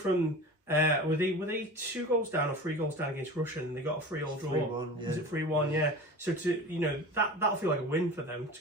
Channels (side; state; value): both; normal; correlation 0.35